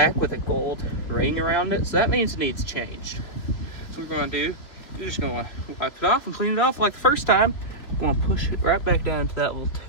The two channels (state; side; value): late; right; 3.5 ms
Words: with a gold ring around it, so that means it needs changed. So what we're going to do, you're just going to wipe it off and clean it off like the first time. I'm going to push it right back down to that little